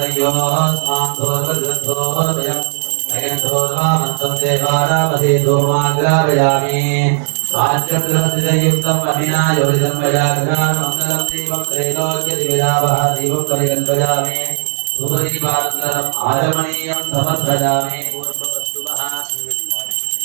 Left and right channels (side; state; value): left; silent; digital silence